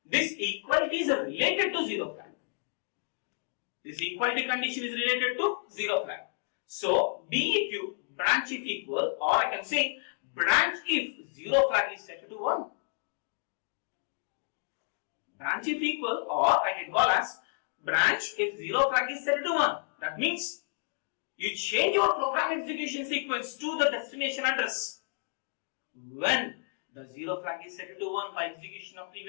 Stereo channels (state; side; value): silent; right; digital silence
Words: This equality is related to zero flag. This equality condition is related to zero flag. So BEQ, branch if equal, or I can say branch if zero flag is set to 1. Branch if equal, or I can call as branch if zero flag is set to 1. That means you change your program execution sequence to the destination address when the zero flag is set to 1 by execution of